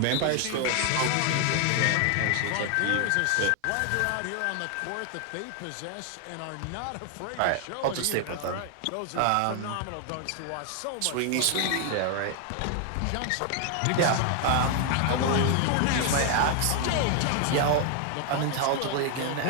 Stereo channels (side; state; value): both; different; correlation 0.00